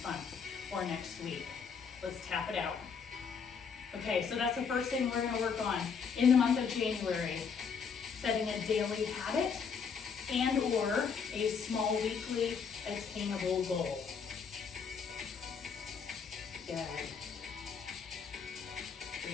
month or next week. Let's tap it out. Okay, so that's the first thing we're gonna work on in the month of January. Setting a daily habit and or a small weekly attainable goal. Good.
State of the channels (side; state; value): right; quieter; 6.1 dB